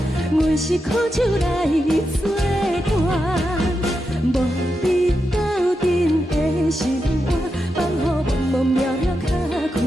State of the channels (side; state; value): both; normal; correlation 0.87